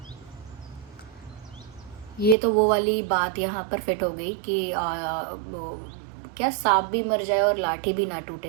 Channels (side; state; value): left; drops out; at 2.4 s